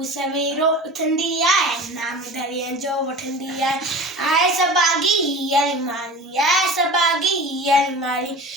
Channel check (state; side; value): normal; both; correlation 0.35